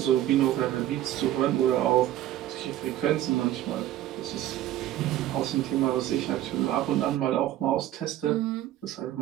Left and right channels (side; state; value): left; quieter; 13.3 dB